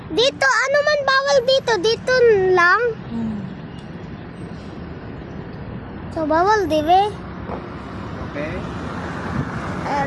Dito, ano man bawal dito? Dito lang. So, bawal, di ba? Okay?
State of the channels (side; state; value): both; identical; correlation 1.00